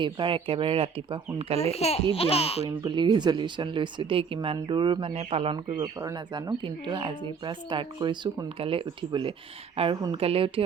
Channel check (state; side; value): quieter; left; 5.9 dB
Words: এইবাৰ একেবাৰে ৰাতিপুৱা সোনকালে উঠি ব্যায়াম কৰিম বুলি ৰিজলিউশ্যন লৈছোঁ দেই কিমান দূৰ মানে পালন কৰিব পাৰোঁ নাজানো কিন্তু আজিৰ পৰা ষ্টাৰ্ট কৰিছোঁ সোনকালে উঠিবলৈ আৰু সোনকালে উঠি